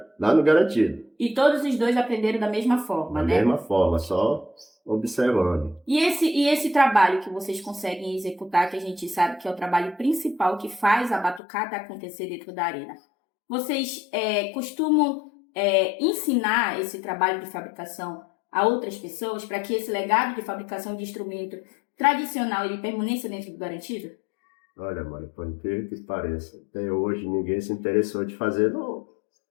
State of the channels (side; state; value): right; drops out; at 11.4 s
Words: lá no Garantido. E todos os 2 aprenderam da mesma forma, Da né? mesma forma, só observando. E esse trabalho que vocês conseguem executar, que a gente sabe que é o trabalho principal que faz a batucada acontecer dentro da arena, vocês costumam ensinar esse trabalho de fabricação a outras pessoas para que esse legado de fabricação de instrumento tradicional ele permaneça dentro do Garantido? Olha, mano, por incrível que pareça, até hoje ninguém se interessou de fazer, não.